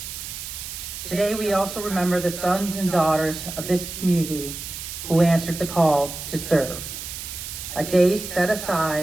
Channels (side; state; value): right; noise; hiss, 8 dB below the sound